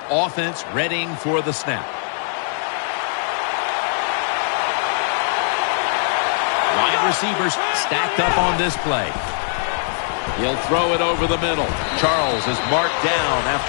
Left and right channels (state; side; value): silent; right; digital silence